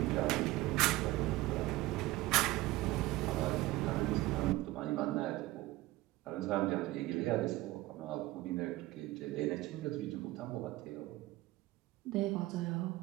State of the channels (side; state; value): left; quieter; 18.3 dB